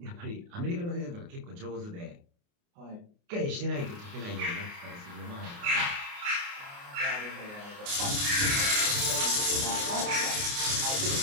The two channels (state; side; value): late; left; 29 ms